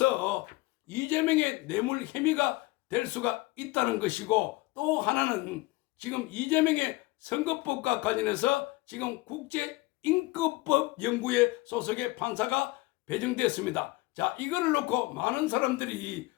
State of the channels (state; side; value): quieter; right; 21.3 dB